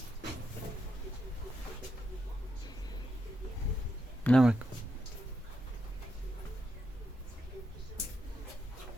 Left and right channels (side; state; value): both; normal; correlation 0.83